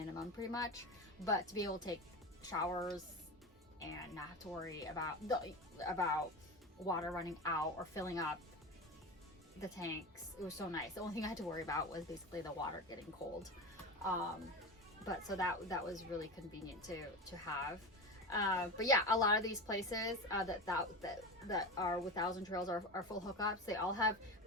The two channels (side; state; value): both; normal; correlation 0.25